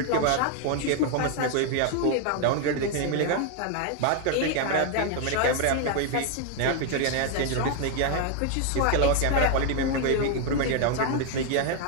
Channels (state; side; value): different; both; correlation 0.01